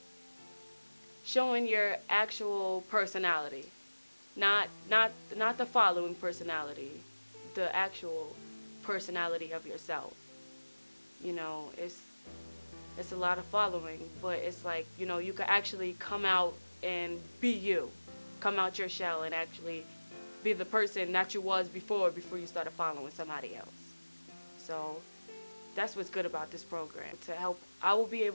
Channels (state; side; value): inverted; both; correlation -1.00